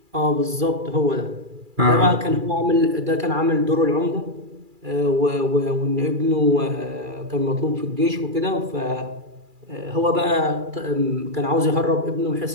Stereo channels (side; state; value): left; late; 2.3 ms